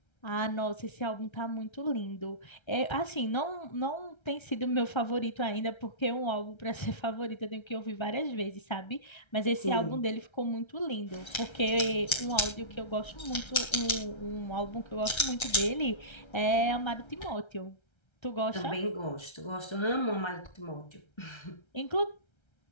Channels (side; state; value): right; late; 1.3 ms